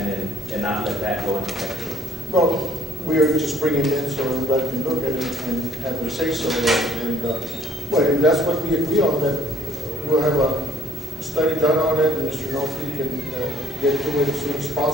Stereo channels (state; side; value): normal; both; correlation 0.59